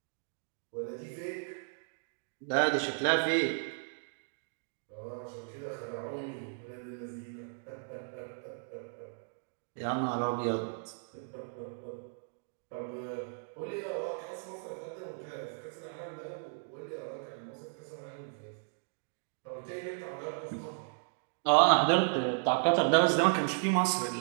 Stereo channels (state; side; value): silent; left; digital silence